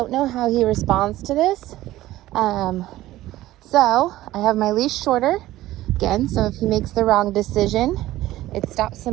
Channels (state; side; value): quieter; left; 15.7 dB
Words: know how he responds to this. So I have my leash shorter. Again, so if he makes the wrong decision, it stops